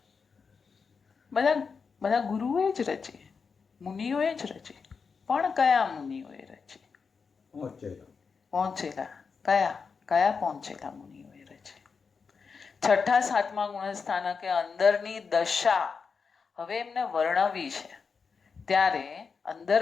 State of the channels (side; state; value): right; quieter; 5.4 dB